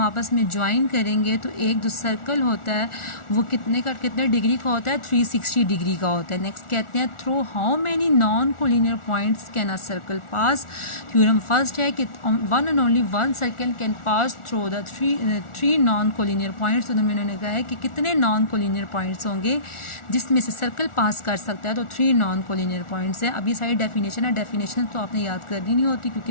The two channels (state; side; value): late; right; 1.4 ms